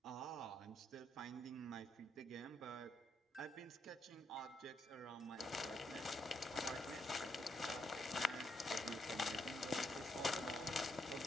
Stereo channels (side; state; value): both; normal; correlation 0.77